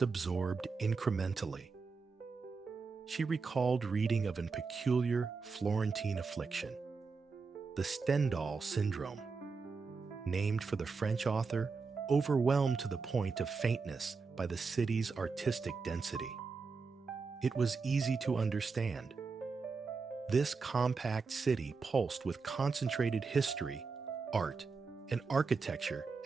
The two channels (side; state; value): left; quieter; 4.7 dB